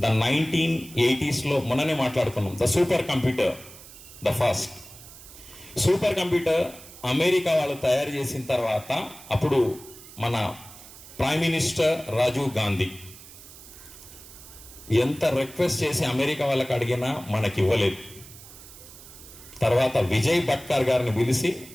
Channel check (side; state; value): right; noise; hiss, 18 dB below the sound